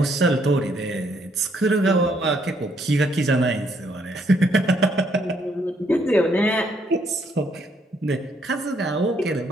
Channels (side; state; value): both; normal; correlation 0.70